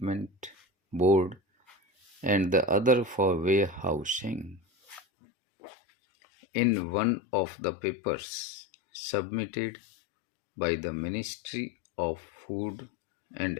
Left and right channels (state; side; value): drops out; right; at 5.0 s